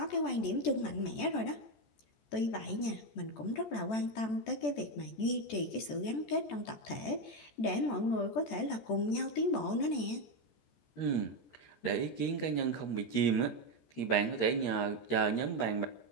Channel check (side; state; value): right; late; 14 ms